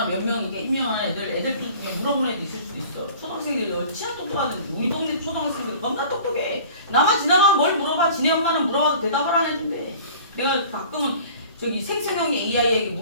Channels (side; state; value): both; inverted; correlation -0.45